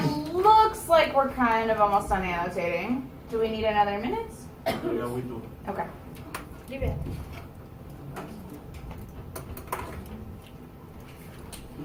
looks like we're kind of almost done annotating. Do we need another minute? Yeah, we do. Okay. Give it.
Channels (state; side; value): identical; both; correlation 1.00